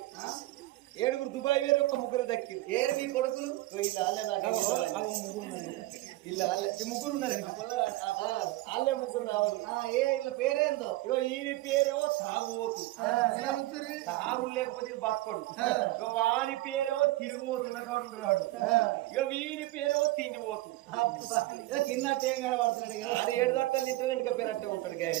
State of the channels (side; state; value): left; quieter; 18.1 dB